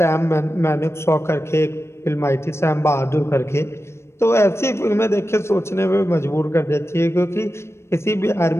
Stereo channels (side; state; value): right; late; 0.13 ms